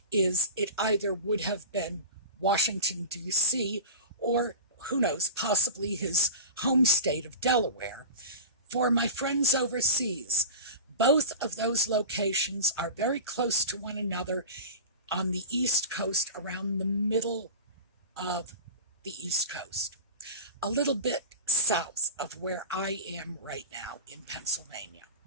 is it either would have been Washington, D.C., or, who knows, possibly his home state of Delaware. For my friends overseas, both of those locations are very close to one another on the East Coast, around the middle of the East Coast, a little bit south of where I am right now in Pennsylvania.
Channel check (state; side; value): inverted; both; correlation -0.31